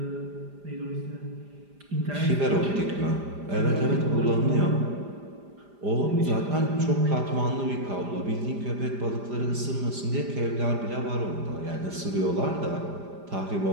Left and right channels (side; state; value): left; late; 5.0 ms